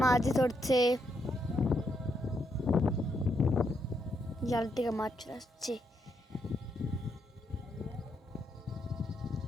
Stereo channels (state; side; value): normal; both; correlation 0.78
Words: মাছ ধরছে, জাল থেকে মাছ চলে আসছে।